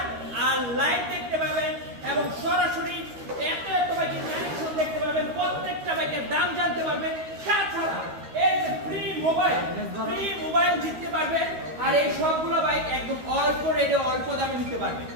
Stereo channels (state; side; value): late; left; 13 ms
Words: আর লাইভ দেখতে পাবেন এবং সরাসরি এত বাইকের কালেকশন দেখতে পাবেন, প্রত্যেকটা বাইকের দাম জানতে পারবেন। তাছাড়া এই যে ফ্রি মোবাইল জিততে পারবেন আর এই সবগুলো বাইক একদম অল্প রেটে অল্প দামে নিতে পারবেন।